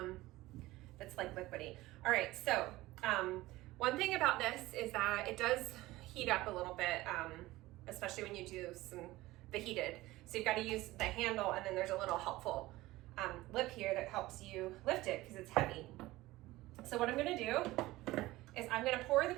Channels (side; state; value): left; quieter; 18.2 dB